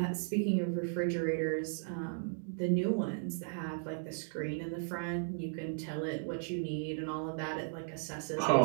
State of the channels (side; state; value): left; silent; digital silence